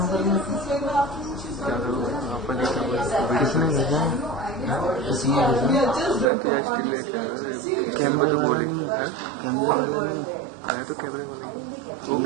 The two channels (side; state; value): left; drops out; at 6.3 s